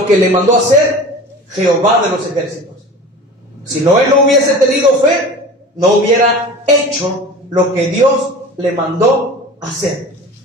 que le mandó hacer Jehová de los ejércitos. Si Noé no hubiese tenido fe, no hubiera hecho lo que Dios le mandó hacer.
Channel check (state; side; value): normal; both; correlation 0.37